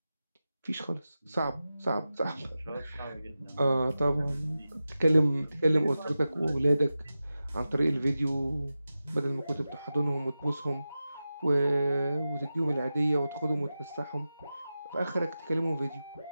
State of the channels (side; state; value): both; inverted; correlation -0.93